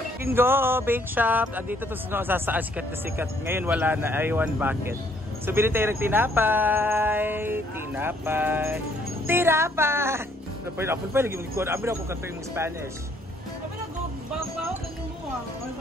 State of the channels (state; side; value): normal; both; correlation 0.66